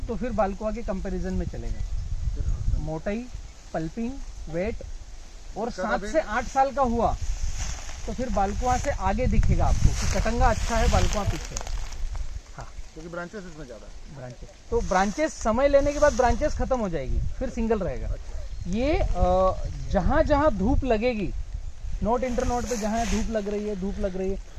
तो फिर बालकुआ के कंपैरिजन में चलेगा। मोटाई, पल्पिंग, वेट, और 7 से 8 साल का हुआ तो फिर बालकुआ से आगे दिखेगा आपको कि कटंगा अच्छा है, बालकुआ पीछे। हाँ, क्योंकि ब्रांचेस इसमें ज़्यादा है। ब्रांचेस तो ब्रांचेस समय लेने के बाद ब्रांचेस खत्म हो जाएगी, फिर सिंगल रहेगा। ये जहाँ जहाँ धूप लगेगी, नोट इंटर नोट पे जहाँ धूप लग रही है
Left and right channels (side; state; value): both; identical; correlation 1.00